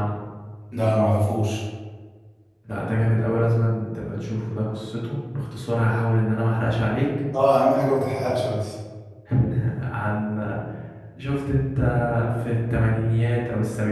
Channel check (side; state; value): both; identical; correlation 1.00